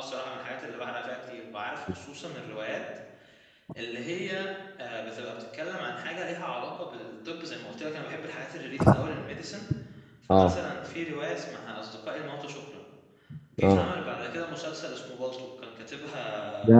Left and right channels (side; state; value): both; identical; correlation 1.00